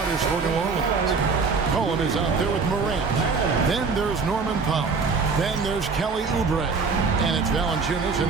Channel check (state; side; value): quieter; left; 4.7 dB